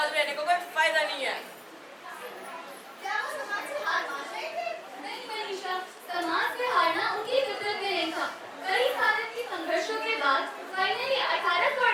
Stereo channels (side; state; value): both; identical; correlation 1.00